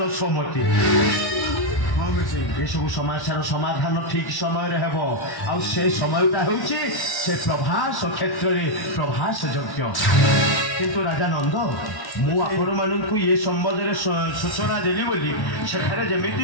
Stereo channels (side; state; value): right; late; 1.1 ms